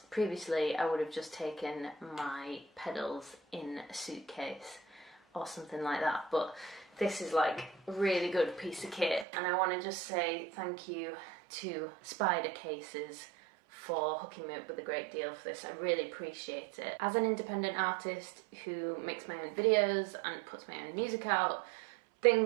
previously I would have just taken my pedals in a suitcase or something like that, but this is like a really good piece of kit, and I want to just say thank you to Spider Cases for hooking me up with a great deal for this. I really appreciate it. As an independent artist who makes my own videos and puts my own music out,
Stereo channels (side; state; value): left; drops out; at 9.2 s